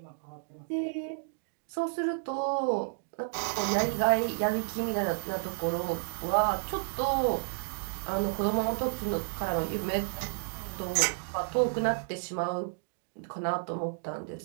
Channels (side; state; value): left; silent; digital silence